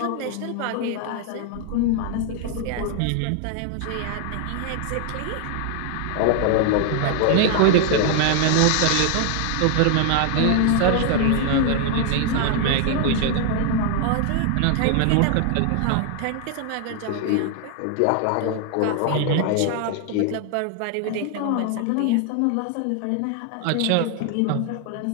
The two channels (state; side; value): different; both; correlation 0.00